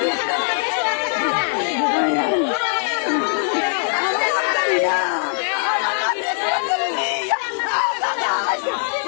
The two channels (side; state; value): right; silent; 56 dB below the other